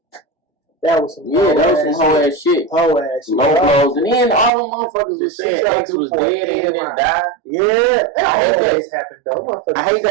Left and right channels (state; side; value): drops out; left; at 4.5 s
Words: That was some whole ass shit. Whole ass shit. Low blows. And then all the motherfuckers was saying ex was dead and then died. Yeah. That always happened though. I hate